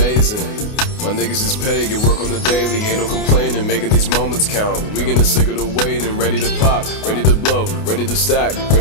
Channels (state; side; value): late; right; 28 ms